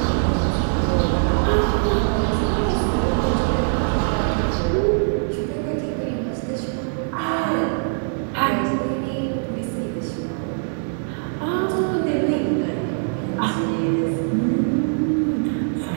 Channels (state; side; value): silent; left; digital silence